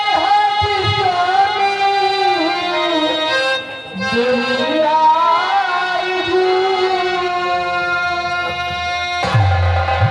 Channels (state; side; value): identical; both; correlation 1.00